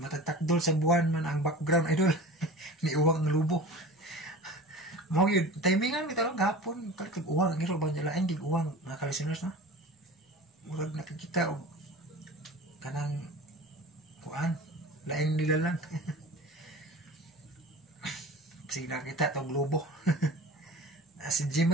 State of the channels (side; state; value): both; normal; correlation 0.37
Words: sa buwan man ang background idol. Ni uwang ng lubo. Mau yun, timingan kita lang gapon, kalit uwang, ngiro ba nila, ay uwang, mga kalisiners na. Murag nakikita o kanang kuan, lain nila lang. Sige nakita ito, globo. Si